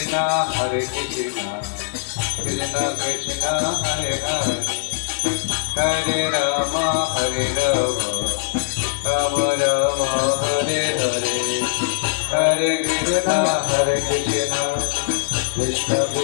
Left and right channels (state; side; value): silent; right; digital silence